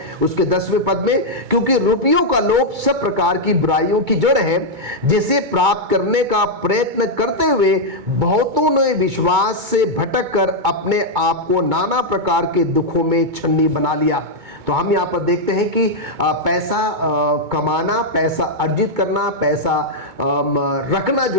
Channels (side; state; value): left; late; 2.2 ms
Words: उसके 10वें पद में, क्योंकि रुपयों का लोभ सब प्रकार की बुराइयों की जड़ है, जिसे प्राप्त करने का प्रयत्न करते हुए बहुतों ने विश्वास से भटक कर अपने आप को नाना प्रकार के दुखों में छन्नी बना लिया। तो हम यहाँ पर देखते हैं कि पैसा कमाना, पैसा अर्जित करना, पैसा रखना जो